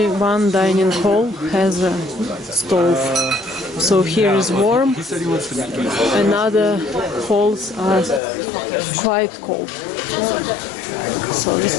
one dining hall has a stove. So here is warm, and other halls are quite cold. So this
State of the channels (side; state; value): right; drops out; at 8.2 s